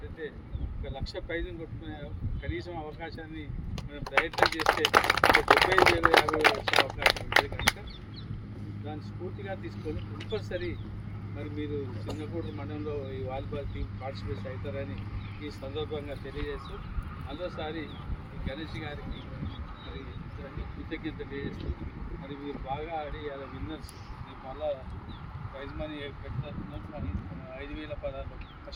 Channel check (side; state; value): both; identical; correlation 1.00